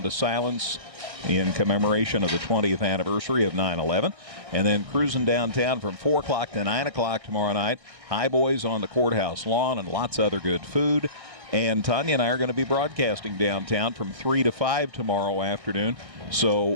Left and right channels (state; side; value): late; left; 1.6 ms